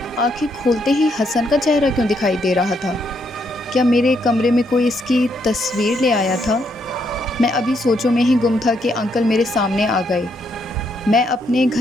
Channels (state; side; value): normal; both; correlation 0.75